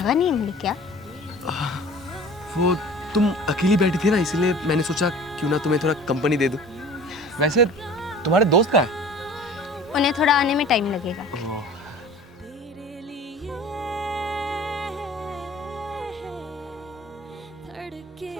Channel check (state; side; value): normal; both; correlation 0.44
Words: नहीं मिली क्या? वो तुम अकेली बैठी थी ना, इसीलिए मैंने सोचा क्यों ना तुम्हें थोड़ा कंपनी दे दूं। वैसे तुम्हारे दोस्त कहाँ हैं? उन्हें थोड़ा आने में टाइम लगेगा। तेरे लिए धड़के